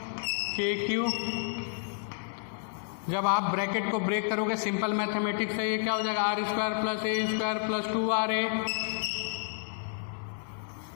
KQ। जब आप ब्रैकेट को ब्रेक करोगे सिंपल मैथमेटिक्स से, ये क्या हो जाएगा, r square plus A square plus 2RA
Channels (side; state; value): right; silent; 58 dB below the other